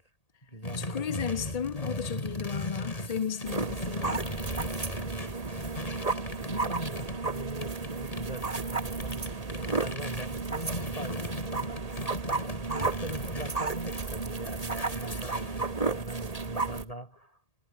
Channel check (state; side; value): late; right; 1.8 ms